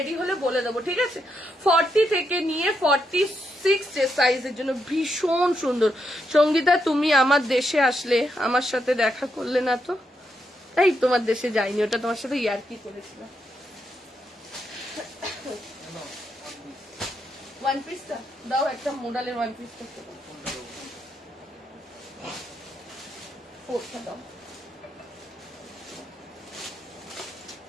হলে বলে দেবো, ঠিক আছে। 40 থেকে নিয়ে 46 যে সাইজের জন্য ভীষণ সুন্দর। সঙ্গীতা তুমি আমার দেশে আসলে আমার সাথে দেখা করলে না তো? তাই তোমার দেশে যাইনি, ওটা তোমার সাথে ইয়ার্কি করেছিল। 1 পিসটা দাও, একটা মোডালের 1 পিসটা দাও।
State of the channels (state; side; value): normal; both; correlation 0.81